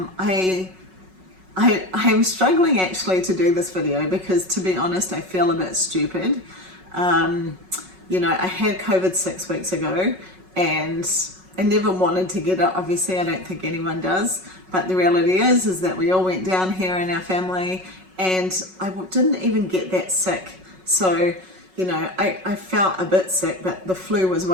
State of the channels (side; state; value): left; late; 5.4 ms